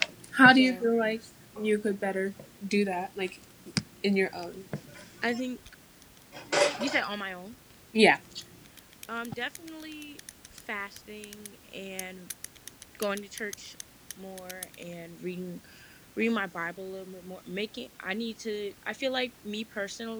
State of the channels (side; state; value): both; identical; correlation 1.00